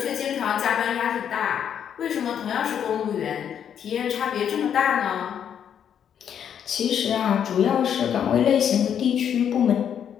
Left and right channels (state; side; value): quieter; right; 8.7 dB